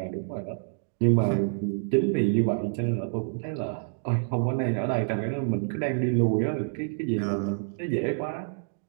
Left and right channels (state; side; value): silent; left; digital silence